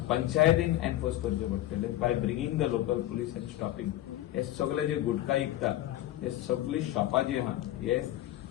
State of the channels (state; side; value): quieter; right; 14.2 dB